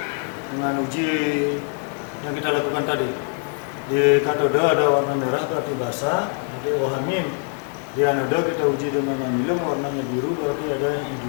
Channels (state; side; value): quieter; right; 39.1 dB